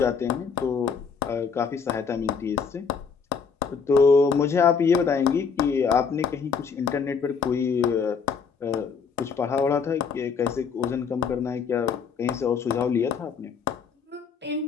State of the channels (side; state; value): right; quieter; 5.9 dB